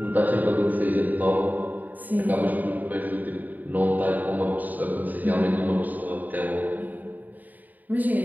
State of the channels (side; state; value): left; late; 0.084 ms